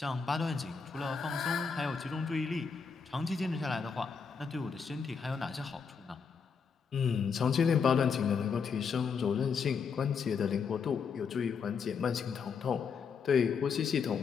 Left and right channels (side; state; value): right; quieter; 5.9 dB